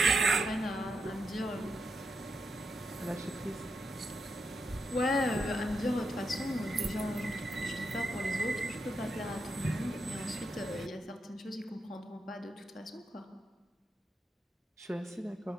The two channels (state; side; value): normal; both; correlation 0.83